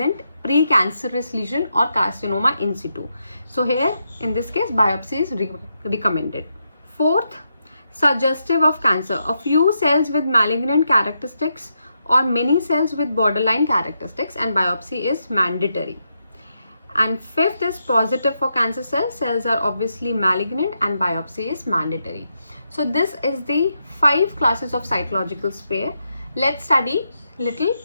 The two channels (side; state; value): both; inverted; correlation -0.83